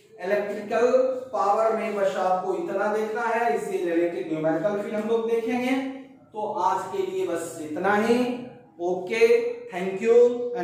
इलेक्ट्रिकल पावर में बस आपको इतना देखना है, इससे रिलेटेड न्यूमेरिकल फिर हम लोग देखेंगे। तो आज के लिए बस इतना ही। Okay, thank you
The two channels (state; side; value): identical; both; correlation 1.00